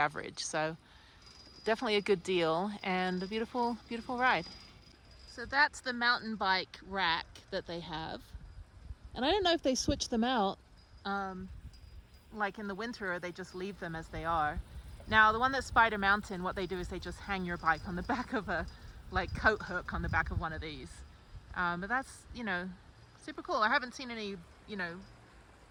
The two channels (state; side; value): identical; both; correlation 1.00